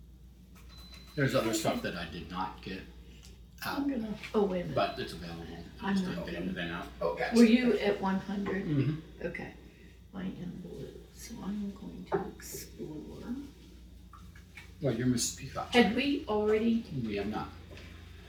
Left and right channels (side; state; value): both; identical; correlation 1.00